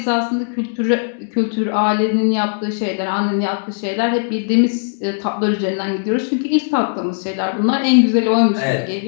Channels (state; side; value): silent; right; digital silence